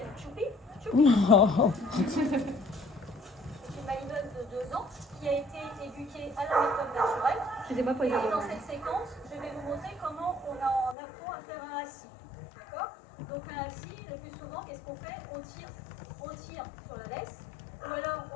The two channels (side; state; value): right; drops out; at 11.0 s